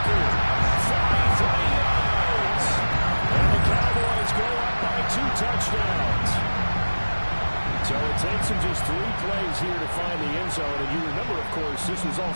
43 yards. And the Cowboys go up by 2 touchdowns. So it takes them just 3 plays here to find the end zone. And you remember, of course, this was all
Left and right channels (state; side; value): inverted; both; correlation -1.00